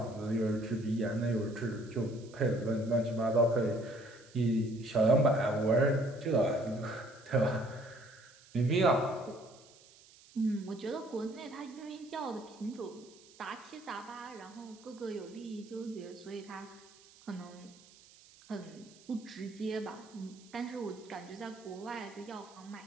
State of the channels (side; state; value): right; noise; hiss, 24 dB below the sound